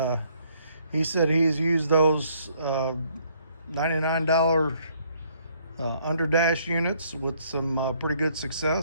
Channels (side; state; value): both; inverted; correlation -0.66